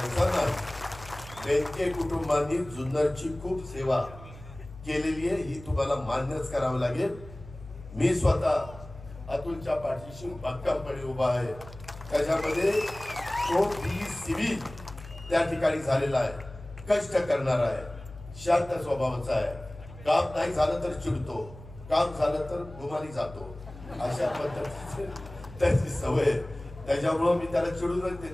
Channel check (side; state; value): left; noise; hum, 16 dB below the sound